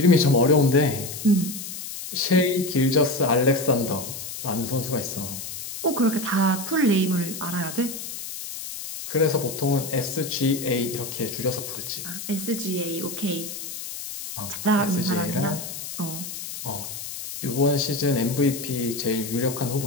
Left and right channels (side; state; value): left; noise; hiss, 8 dB below the sound